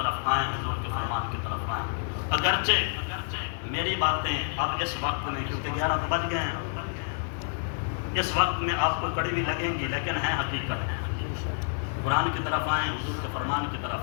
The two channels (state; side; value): silent; right; digital silence